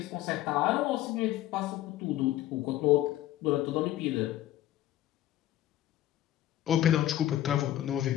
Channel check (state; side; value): quieter; right; 13.6 dB